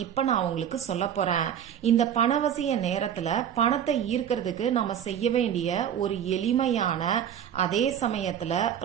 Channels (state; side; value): quieter; left; 9.4 dB